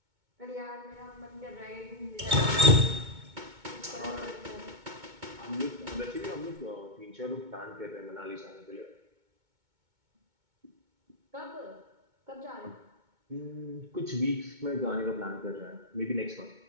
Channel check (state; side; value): late; left; 2.2 ms